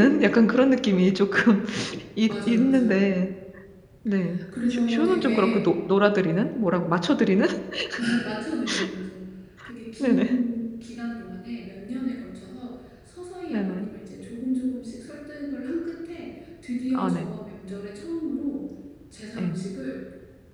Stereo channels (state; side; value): identical; both; correlation 1.00